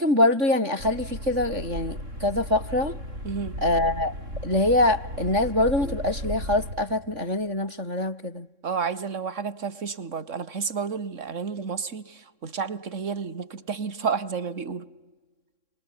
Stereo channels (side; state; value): left; late; 3.6 ms